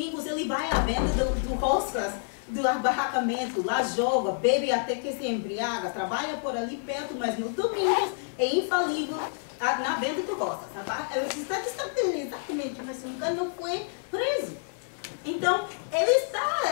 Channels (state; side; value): silent; right; digital silence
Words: ele vai à venda do roscas, do barracamento, lá joga, bebe até que se embriaga, trabalha por ali perto, mas nos domingos é infalível na venda do roscas. Está exatamente, mas nunca não foi preso. Então, ele está,